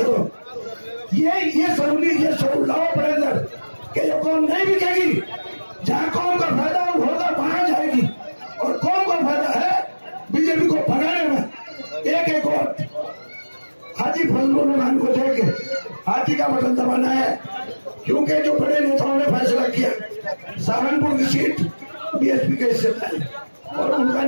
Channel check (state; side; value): inverted; both; correlation -1.00